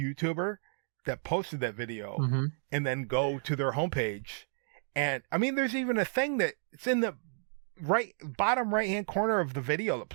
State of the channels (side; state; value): left; silent; digital silence